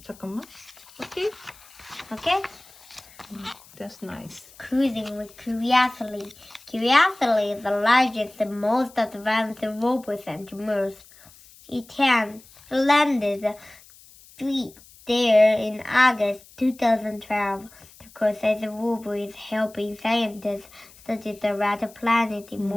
잠깐만. Okay. Okay. That's nice. Cruising with curiosity. Curiosity is the largest and most advanced robot sent to Mars. It landed there in August 2012. The Curiosity robot is helping scientists study the red planet in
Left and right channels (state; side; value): noise; left; hiss, 24 dB below the sound